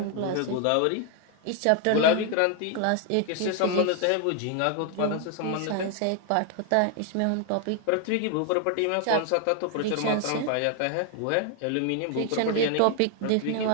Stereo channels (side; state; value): both; different; correlation 0.00